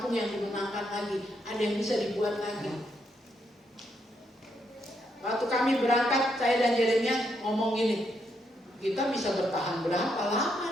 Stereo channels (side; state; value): both; normal; correlation 0.78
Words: yang dimenangkan lagi, ada yang bisa dibuat lagi. Waktu kami berangkat, saya dan Jeremia ngomong gini, kita bisa bertahan berapa